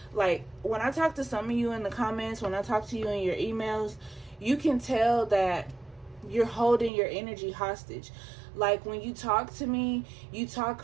Like, when I talk to some of you in the comments, when I talk to you in your emails, you can tell that you're holding your energy hostage. Like, when you talk to me, you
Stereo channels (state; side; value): drops out; left; at 6.9 s